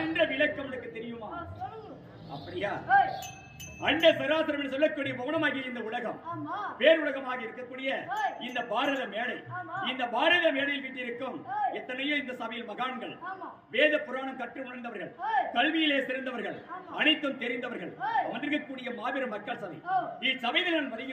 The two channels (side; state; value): both; identical; correlation 1.00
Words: என்ற விளக்கம் உனக்கு தெரியுமா? அப்படியா? அண்ட சராசரம் என்று சொல்லக்கூடிய மௌனமாகிய இந்த உலகம் பேருலகமாக இருக்கக்கூடிய இந்த பாரத மேடை, இந்த பாரத மேடையில் வீட்டிருக்கும் எத்தனையோ இந்த சபையில் மகான்கள், வேத புராணம் கற்று உணர்ந்தவர்கள், கல்வியிலே சிறந்தவர்கள், அனைத்தும் தெரிந்தவர்கள் அமர்ந்திருக்கக்கூடிய மாபெரும் மக்கள் சபை. இச்சபையில் நான்